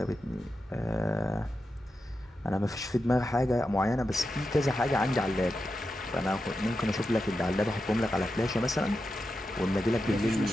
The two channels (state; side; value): normal; both; correlation 0.89